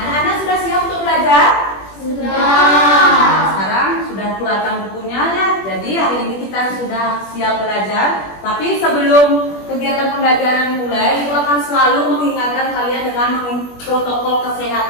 anak-anak sudah siap untuk belajar? Sudah. Nah, sekarang sudah keluarkan bukunya ya. Jadi hari ini kita sudah siap belajar. Tapi sebelum kegiatan pembelajaran dimulai, Ibu akan selalu mengingatkan kalian dengan protokol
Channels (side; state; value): right; late; 21 ms